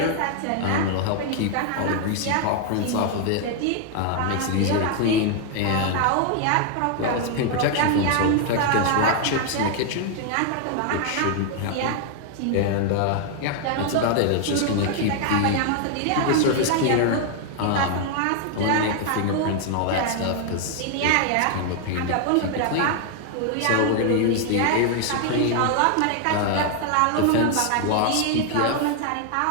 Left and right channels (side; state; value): both; different; correlation 0.00